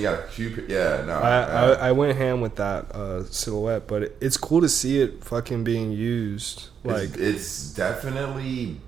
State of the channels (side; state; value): left; quieter; 7.3 dB